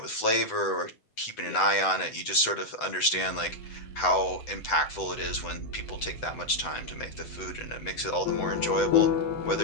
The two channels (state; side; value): late; right; 8.0 ms